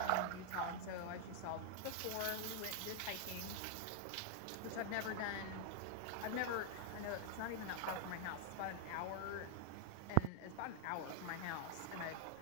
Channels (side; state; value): both; different; correlation 0.00